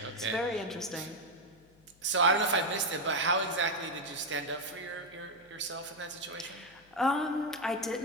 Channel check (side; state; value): left; noise; hum, 30 dB below the sound